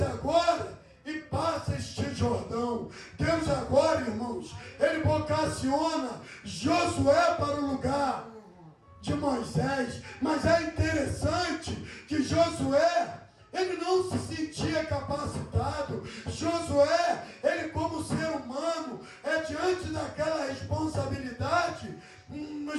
agora e passa este Jordão. Deus agora, irmãos, ele vocaciona Josué para o lugar de Moisés. Mas é interessante que Josué, ele não se sentia capacitado. Josué, ele como ser humano, diante daquela responsabilidade,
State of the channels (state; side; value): identical; both; correlation 1.00